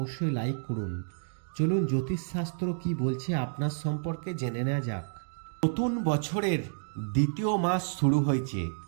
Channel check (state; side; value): silent; left; digital silence